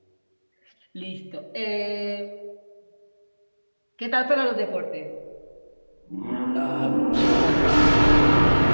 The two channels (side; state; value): both; inverted; correlation -1.00